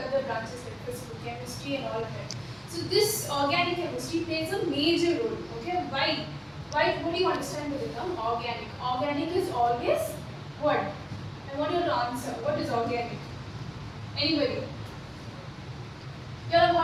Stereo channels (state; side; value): identical; both; correlation 1.00